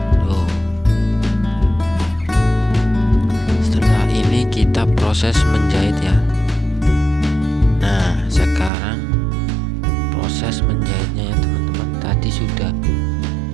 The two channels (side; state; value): left; drops out; at 8.7 s